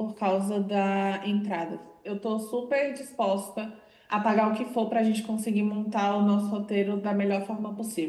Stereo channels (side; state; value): both; identical; correlation 1.00